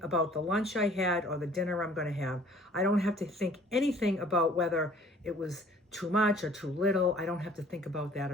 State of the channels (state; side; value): normal; both; correlation 0.53